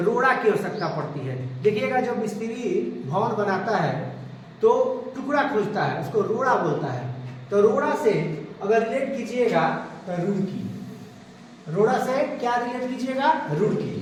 की आवश्यकता पड़ती है। देखिएगा, जब मिस्त्री भवन बनाता है तो टुकड़ा खोजता है, उसको रोड़ा बोलता है। तो रोड़ा से अगर रिलेट कीजिएगा तो रुड़की, रोड़ा से क्या रिलेट कीजिएगा?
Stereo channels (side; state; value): both; identical; correlation 1.00